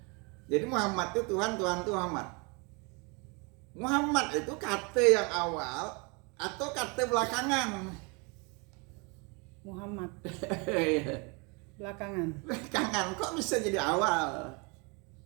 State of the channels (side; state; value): left; quieter; 31.0 dB